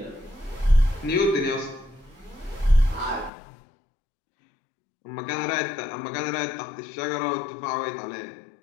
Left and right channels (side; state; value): right; drops out; at 3.3 s